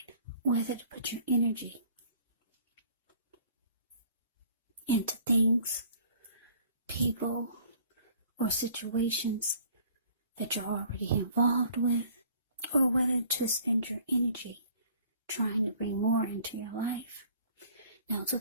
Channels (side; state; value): both; inverted; correlation -0.54